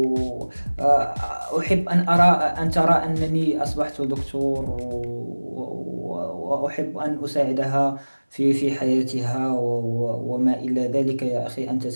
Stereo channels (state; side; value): inverted; both; correlation -1.00